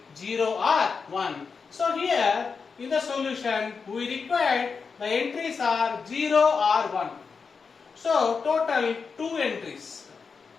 0 or 1. So here in the solution we required the entries are 0 or 1. So total 2 entries.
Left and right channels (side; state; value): right; quieter; 5.3 dB